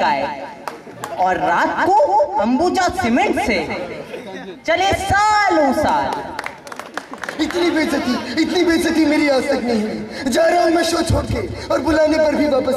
और रात को अंबुजा सीमेंट से चले सालों साल। इतनी बेइज्जती मेरी आज तक नहीं हुई। जा रहा हूँ मैं शो छोड़ के, और बुलाने पर भी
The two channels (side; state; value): both; identical; correlation 1.00